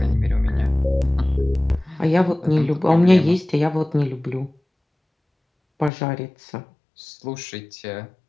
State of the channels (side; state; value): right; drops out; at 5.9 s